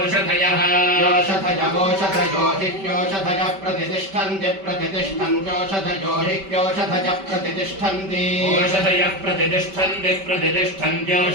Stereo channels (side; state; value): left; late; 5.2 ms